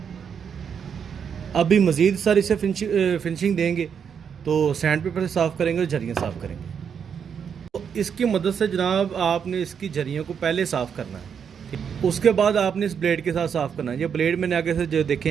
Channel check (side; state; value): left; quieter; 7.3 dB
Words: अभी मज़ीद सर इसे फिनिशिंग देंगे तो सैंड पेपर से साफ़ करेंगे और झरियाँ साफ़ करेंगे। इसकी मदद से जनाब आपने इसकी झरियों को पहले साफ़ करना है। उसके बाद आपने इस ब्लेड के साथ साफ़ करना है। ये ब्लेड मैंने आगे से जो